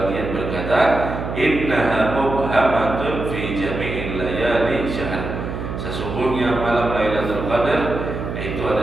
berkata, innaha mubhamatun fi jami'il layali syahr. Sesungguhnya malam Lailatul Qadar itu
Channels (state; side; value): noise; right; hum, 6 dB below the sound